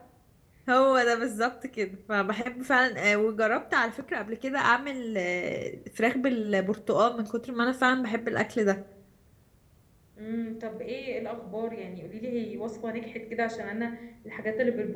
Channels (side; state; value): both; identical; correlation 1.00